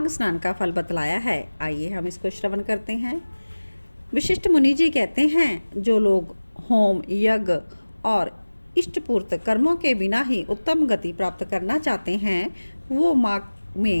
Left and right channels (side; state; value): both; inverted; correlation -1.00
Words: स्नान का फल बतलाया है। आइए हम इसको श्रवण करते हैं। विशिष्ट मुनि जी कहते हैं, जो लोग होम, यज्ञ और इष्टपूर्त कर्मों के बिना ही उत्तम गति प्राप्त करना चाहते हैं वो माघ